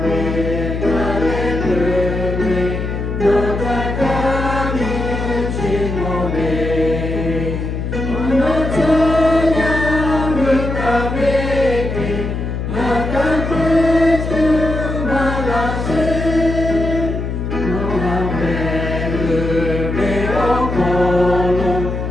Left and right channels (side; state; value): left; noise; hum, 3 dB below the sound